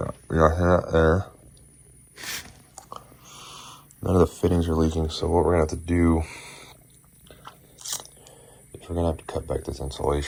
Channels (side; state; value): both; identical; correlation 1.00